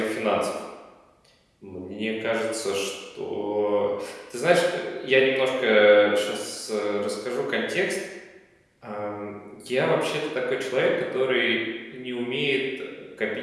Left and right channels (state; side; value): identical; both; correlation 1.00